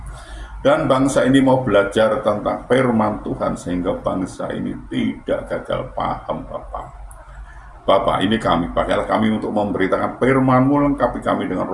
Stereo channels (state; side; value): identical; both; correlation 1.00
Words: Dan bangsa ini mau belajar tentang firman Tuhan sehingga bangsa ini tidak gagal paham Bapak. Bapak, ini kami, pakailah kami untuk memberitakan firman-Mu, lengkapi kami dengan